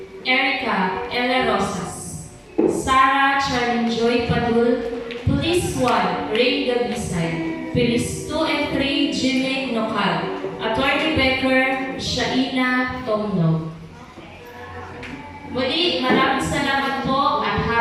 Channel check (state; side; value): identical; both; correlation 1.00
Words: Erica Ella Rosas. Sarah Charlene Joy Padul. Police 1 Ray Gabisay. Police 2 and 3 Jimmy Nokal. Attorney Becker Shaina Tomno. Muli, maraming salamat po at